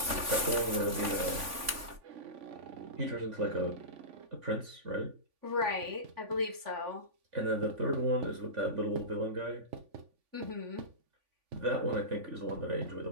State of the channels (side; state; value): left; late; 3.5 ms